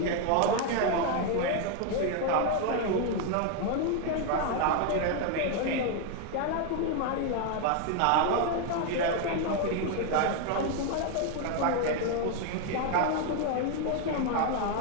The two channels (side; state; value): both; different; correlation 0.00